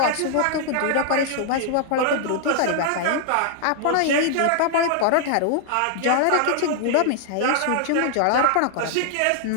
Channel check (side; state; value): both; different; correlation 0.00